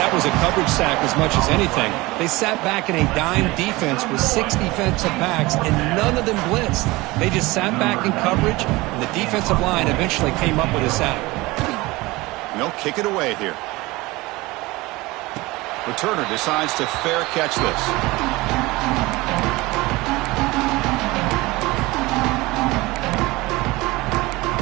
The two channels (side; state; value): left; quieter; 21.3 dB